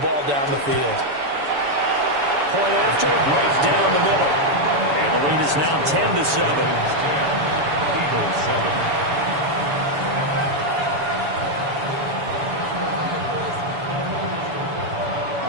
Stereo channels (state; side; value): late; left; 7.0 ms